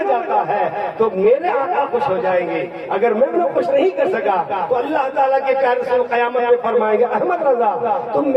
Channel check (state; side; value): identical; both; correlation 1.00